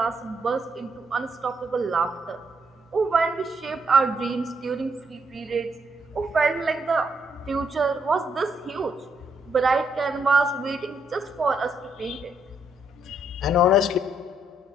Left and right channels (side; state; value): both; normal; correlation 0.75